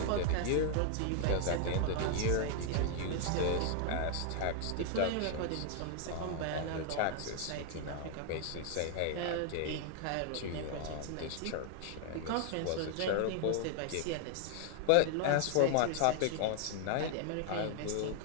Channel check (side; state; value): both; different; correlation 0.00